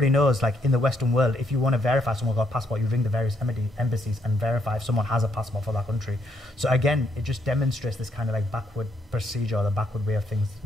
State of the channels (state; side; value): normal; both; correlation 0.74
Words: knows, like, in the Western world, if you want to verify someone's got a passport, you ring the various embassies and verify if someone has a passport for that country. So again, it just demonstrates this kind of like backward procedure, or the backward way of things.